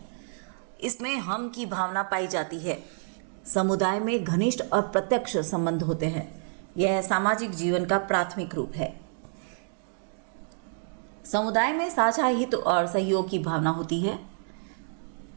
इसमें हम की भावना पाई जाती है। समुदाय में घनिष्ठ और प्रत्यक्ष संबंध होते हैं। यह सामाजिक जीवन का प्राथमिक रूप है। समुदाय में साझा हित और सहयोग की भावना होती है।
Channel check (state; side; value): silent; left; digital silence